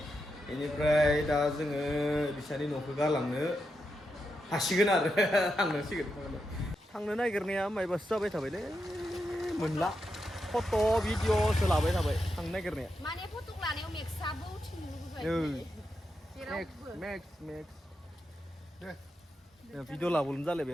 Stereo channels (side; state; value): both; normal; correlation 0.86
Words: बेनिफ्राय दा जोङो बिसानि न'खौ गालांनो हासिगोन आरो थांनांसिगोन थांनो नागिरनाया मायबासो जाबाय थाबायलै मोनला फट' भिडिअ'सो लाबाय थाबाय थांनो नागिरनाया माने फट' लानायाव मेक्सआबो उथिनो लुबैबाय मेक्स भिडिअ' लाबोनो